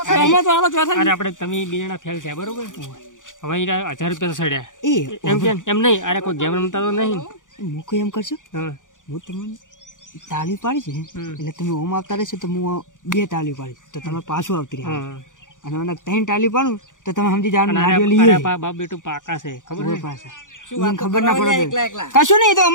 સહમાં તો હાલો ચોથા અરે આપણે તમે બે જણા ફેલ થયા બરોબર હવે ઈ 1000 રૂપિયા તો સડ્યા એ એમ કેમ એમ નહીં અરે કોઈ ગેમ રમતા તો નહીં મૂકો એમ કરશો હા હું તમને તાળી પાડી છે એટલે તમે ઓમ આવતા રહેશો તો હું 2 તાળી પાડીશ તો તમે પાછું આવતી રહ્યા હા અને મને 3 તાળી પાડું તો તમે સમજી જાવ અને નારિયેળ અરે લઈએ બાપ બેટું પાકા છે ખબર ઓય છે પાસે શું એને વાત ખબર ના કરો? પડે એકલા એકલા કશું નહીં એ તો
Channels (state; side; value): late; right; 0.87 ms